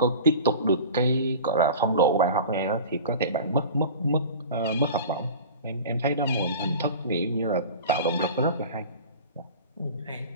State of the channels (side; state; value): both; inverted; correlation -0.36